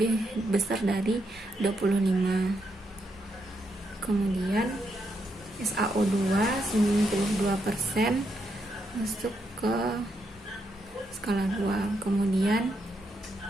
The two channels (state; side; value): normal; both; correlation 0.80